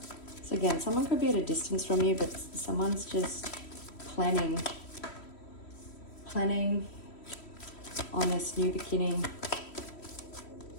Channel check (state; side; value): late; right; 3.1 ms